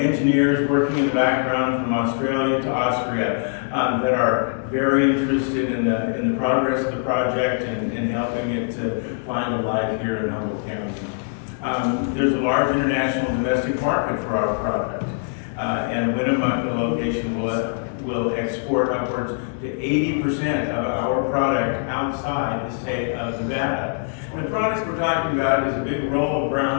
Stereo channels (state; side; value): silent; right; digital silence